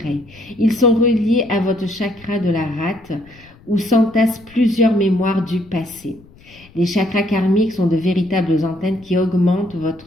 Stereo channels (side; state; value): left; noise; rumble, 25 dB below the sound